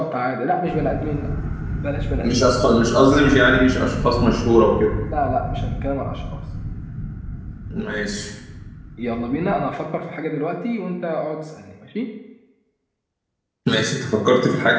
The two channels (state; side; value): identical; both; correlation 1.00